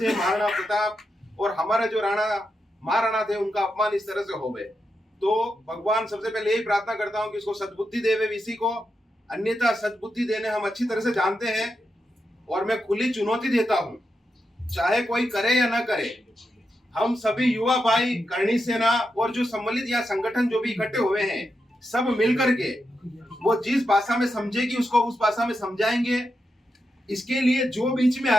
है महाराणा प्रताप और हमारे जो महाराणा थे, उनका अपमान इस तरह से हो गए। तो भगवान सबसे पहले यही प्रार्थना करता हूँ कि इसको सद्बुद्धि देवे वीसी को, अन्यथा सद्बुद्धि देने हम अच्छी तरह से जानते हैं, और मैं खुली चुनौती देता हूँ, चाहे कोई करे या ना करे, हम सभी युवा भाई करणी सेना और जो सम्मिलित या संगठन जो भी इकट्ठे हुए हैं, सब मिलकर के वो जिस भाषा में समझेगी उसको उस भाषा में समझाएंगे। इसके लिए जो बीच में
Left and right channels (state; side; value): normal; both; correlation 0.86